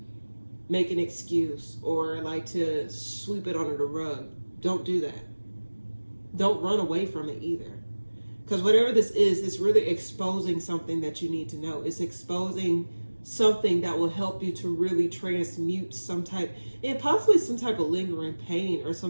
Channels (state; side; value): inverted; both; correlation -1.00